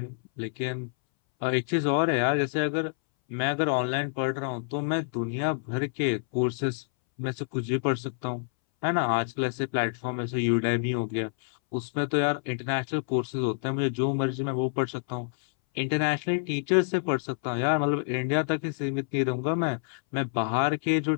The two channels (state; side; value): silent; right; 60 dB below the other